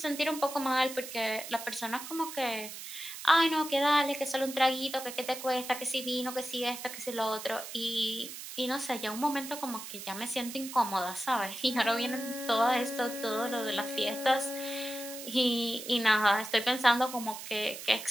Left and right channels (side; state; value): right; noise; hiss, 10 dB below the sound